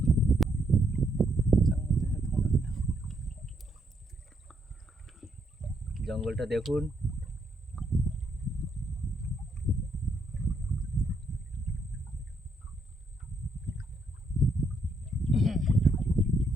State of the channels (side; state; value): both; normal; correlation 0.75